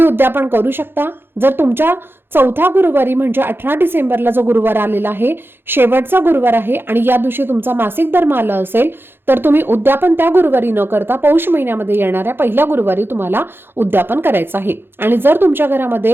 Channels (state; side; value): late; left; 0.10 ms